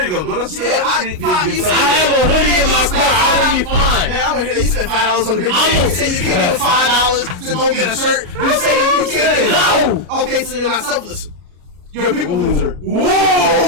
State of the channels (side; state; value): left; late; 33 ms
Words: you go. Go to the Yeah, street. I have a hoodie in my car. I'll be fine. Man, I want to hear that you spent $5 on the big I'm thing. You say you can't give $5 to go get a shirt. You say you can't. No. Okay, so you're not selfless. You're a people pleaser.